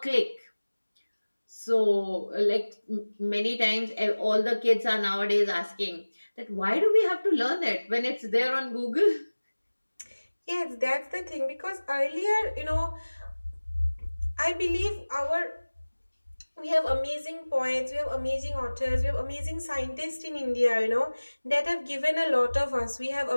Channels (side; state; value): both; inverted; correlation -1.00